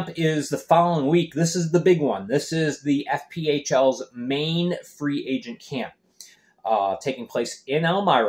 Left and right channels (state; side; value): identical; both; correlation 1.00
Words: is the following week. This is the big one. This is the FPHL's main free agent camp, taking place in